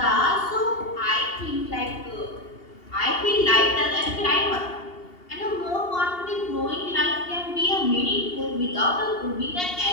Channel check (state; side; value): late; right; 2.8 ms